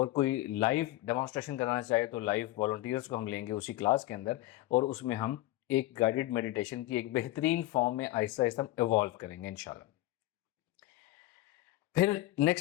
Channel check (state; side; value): quieter; right; 17.0 dB